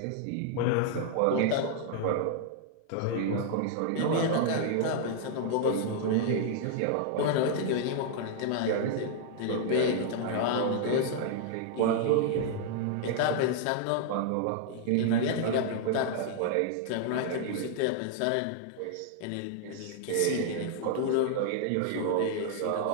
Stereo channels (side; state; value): both; different; correlation -0.01